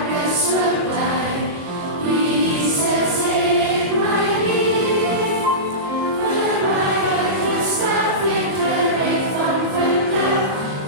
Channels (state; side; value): late; left; 22 ms